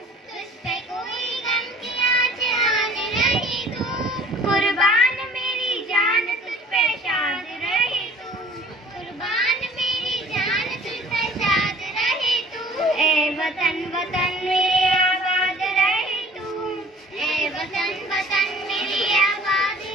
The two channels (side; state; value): both; normal; correlation 0.50